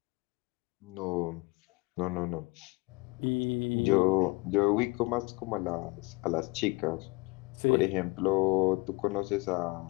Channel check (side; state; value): right; quieter; 25.3 dB